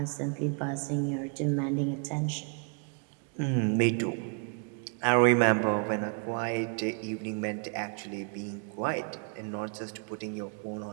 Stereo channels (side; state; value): left; quieter; 38.4 dB